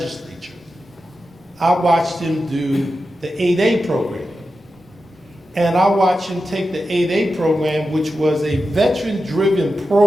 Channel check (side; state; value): both; normal; correlation 0.91